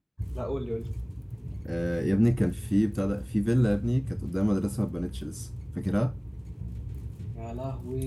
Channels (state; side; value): identical; both; correlation 1.00